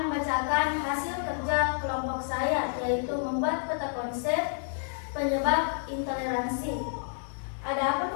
membacakan hasil kerja kelompok saya, yaitu membuat peta konsep penyebab intoleransi. Adapun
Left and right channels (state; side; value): silent; right; digital silence